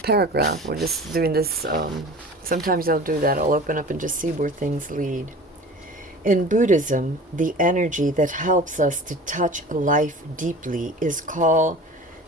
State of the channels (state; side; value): normal; both; correlation 0.39